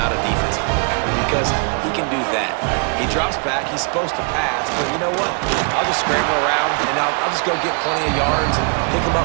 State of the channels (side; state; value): left; quieter; 37.3 dB